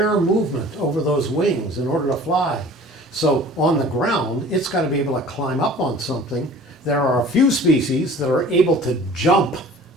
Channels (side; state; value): both; normal; correlation 0.45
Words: movement over those wings in order to fly. So on the ground, it's got to be able to climb up on something. There are a few species that are able to jump.